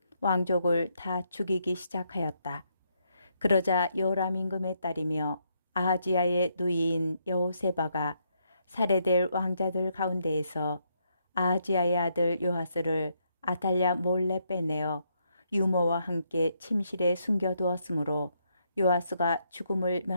왕족을 다 죽이기 시작하였다. 그러자 요람 임금의 딸이며 아하지야의 누이인 여호세바가 살해될 왕자들 가운데에서 아하지야의 아들 요아스를 아탈랴 몰래 빼내어 유모와 함께 침실에 숨겨두었으므로 요아스가 죽음을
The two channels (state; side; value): inverted; both; correlation -0.76